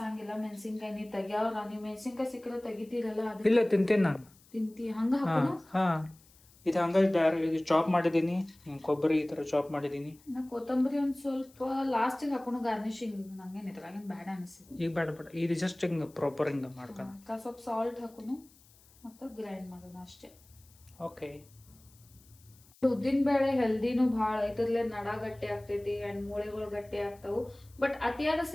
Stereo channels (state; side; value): noise; left; hiss, 28 dB below the sound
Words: ಮೆಣಸಿನ್ಕಾಯಿ ನೀ ತೆಗ್ಯಾವ್ರ, ನೀವ್ ಮೆಣಸಿನ್ಕಾಯಿ ಸಿಕ್ಕದ ತೆಗಿತೀರಲ್ಲ. ಇಲ್ಲ, ತಿಂತೇನೆ ನಾನು. ತಿಂತಿ ಹಂಗ ಹಾಕೋನು. ಇದು ಹಂಗ ಚಾಪ್ ಮಾಡಿದೀನಿ. ಕೊಬ್ಬರಿ ಈ ತರ ಚಾಪ್ ಮಾಡಿದೀನಿ. ನಾ ಕೊತ್ತಂಬರಿ ಒಂದ್ ಸ್ವಲ್ಪ ಲಾಸ್ಟಿಗೆ ಹಾಕೋನು ಗಾರ್ನಿಶಿಂಗ್. ನಂಗೇನ್ ಇದ್ರಾಗೇನ್ ಬ್ಯಾಡ ಅನಿಸ್ತದೆ. ಈಗ ಬೇಡ, ಇದು ಜಸ್ಟ್ ಹಿಂಗ ಪ್ರಾಪರ್ ಹಿಂಗ ಮಾಡ್ಕೊಂಡು ಸ್ವಲ್ಪ ಸಾಲ್ಟ್ ಹಾಕೋನು ಮತ್ತೆ ಗ್ರೈಂಡ್ ಮಾಡೋಣ ಅಷ್ಟೇ. ಓಕೆ. ಉದ್ದಿನ ಬೇಳೆ ಹೆಲ್ದಿನೂ ಭಾಳ, ಇದ್ರಲ್ಲೇ ನಡ ಗಟ್ಟಿ ಆಗ್ತೈತಿ ಅಂಡ್ ಮೂಳೆಗಳು ಗಟ್ಟಿ ಆಗ್ತಾವು. ಬಟ್ ಅತಿಯಾದ